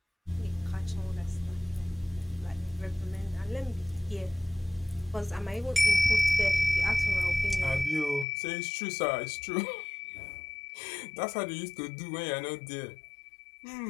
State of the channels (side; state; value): right; drops out; at 8.2 s